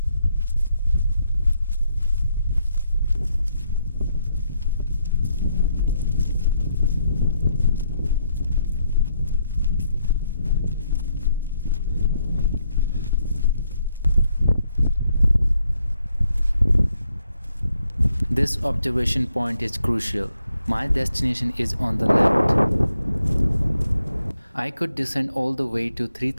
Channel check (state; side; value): inverted; both; correlation -0.76